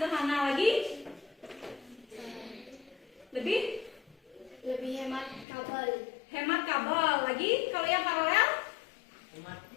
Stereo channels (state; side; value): drops out; right; at 5.5 s